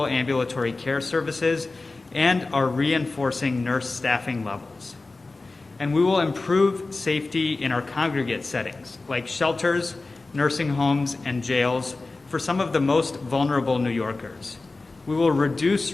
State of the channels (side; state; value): right; quieter; 3.4 dB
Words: ambulatory care services and are reinforcing nurse staffing levels. And we will improve safety in our congregate settings, like shelters, nursing homes, and jails for some of the most vulnerable New Yorkers. We will reduce